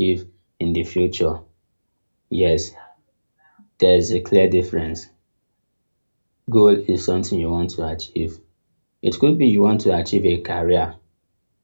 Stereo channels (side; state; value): both; inverted; correlation -1.00